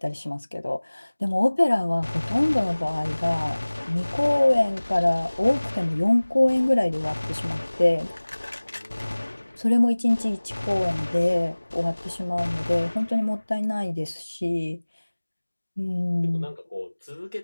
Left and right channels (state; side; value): inverted; both; correlation -1.00